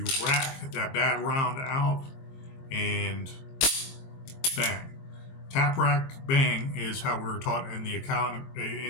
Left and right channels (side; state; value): right; late; 22 ms